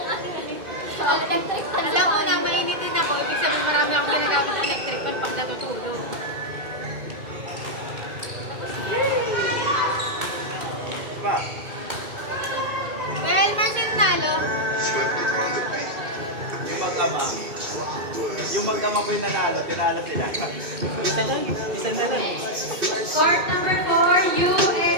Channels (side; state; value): left; late; 2.1 ms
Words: ano eh. So, electric pan. Alam mo na, mainitin ako. Ibig sabihin marami akong ginagamit ng electric pan pag natutulog. Pa. Well, Marcel Nalo. Yung mag-ama. Yung mag-ama po yung nanalo, tinalo sila. Isa lang. Isa na lang. Court number 4, you,